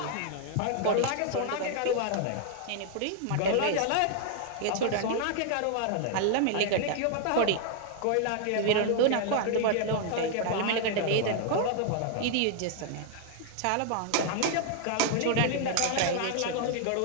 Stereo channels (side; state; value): both; different; correlation 0.00